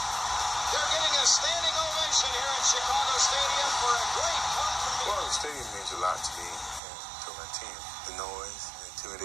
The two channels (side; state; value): left; drops out; at 6.8 s